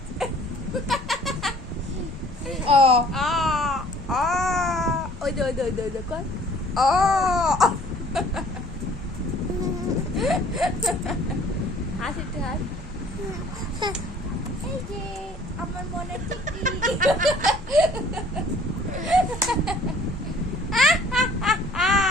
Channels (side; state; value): both; normal; correlation 0.54